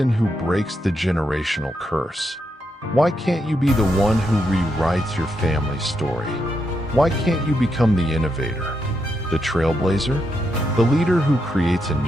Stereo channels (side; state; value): both; normal; correlation 0.82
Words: who breaks the generational curse? Why can't you be the one who rewrites your family's story? Why can't you become the innovator, the trailblazer, the leader who creates a